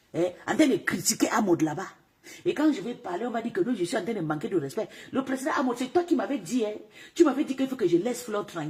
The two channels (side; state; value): both; identical; correlation 1.00